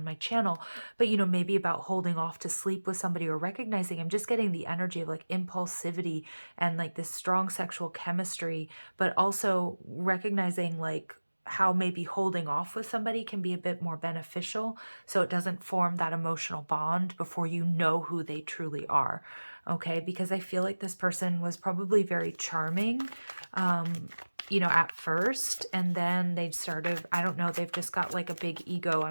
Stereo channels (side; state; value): both; inverted; correlation -1.00